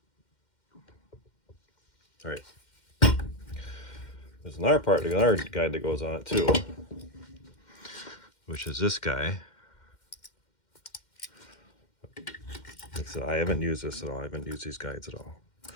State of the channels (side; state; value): right; late; 2.1 ms